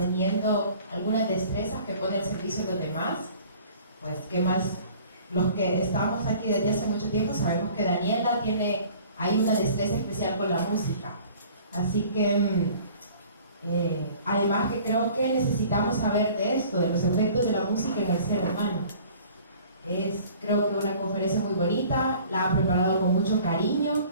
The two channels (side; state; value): both; inverted; correlation -0.49